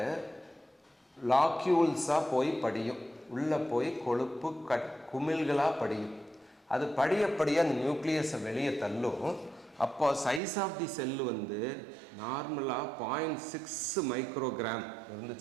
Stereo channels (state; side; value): drops out; left; at 10.4 s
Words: லாக்யூல்ஸாக போய் படியும். உள்ளே போய் கொழுப்பு குமிழ்களாக படியும். அது படிய அந்த நியூக்ளியஸை வெளியே தள்ளும். அப்போ சைஸ் ஆஃப் தி செல்லு நார்மலாக 0.6 மைக்ரோகிராம்